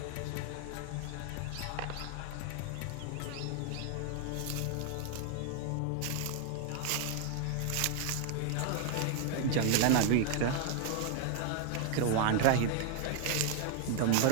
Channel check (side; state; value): both; different; correlation 0.00